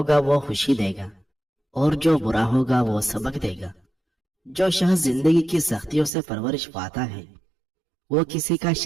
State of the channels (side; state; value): left; drops out; at 6.1 s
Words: वो खुशी देगा और जो बुरा होगा वो सबक देगा। जो शख्स जिंदगी की सख्तियों से परवरिश पाता है वो किसी का